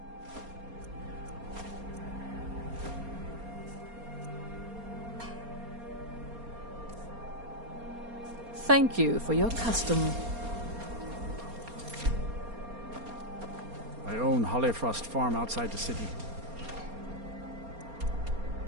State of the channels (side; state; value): left; late; 4.3 ms